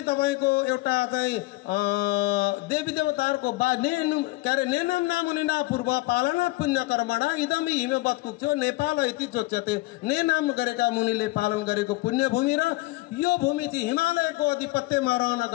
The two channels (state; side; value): quieter; right; 21.1 dB